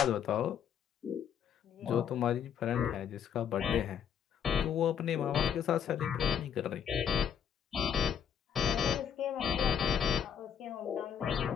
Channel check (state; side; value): quieter; right; 8.5 dB